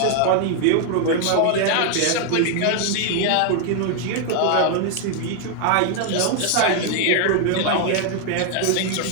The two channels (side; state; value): both; different; correlation 0.00